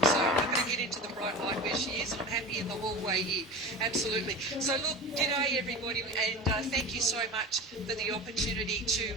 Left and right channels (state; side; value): normal; both; correlation 0.30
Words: So I'm not going to get into the bright light where she is. I'm happy in the hallway here. Absolutely. So look, g'day everybody, and thank you so much for the opportunity